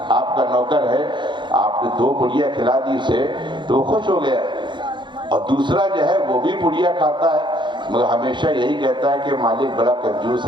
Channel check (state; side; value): late; left; 0.23 ms